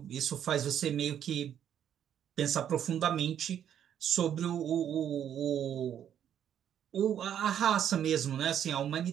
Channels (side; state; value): left; quieter; 9.6 dB